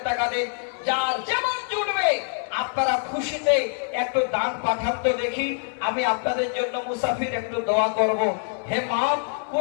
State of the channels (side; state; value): right; silent; 62 dB below the other